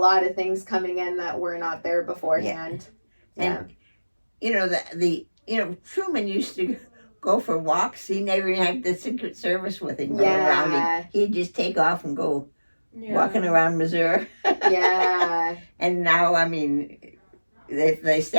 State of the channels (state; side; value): inverted; both; correlation -1.00